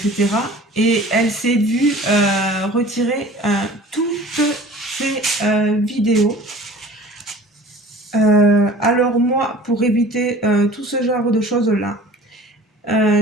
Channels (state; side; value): normal; both; correlation 0.44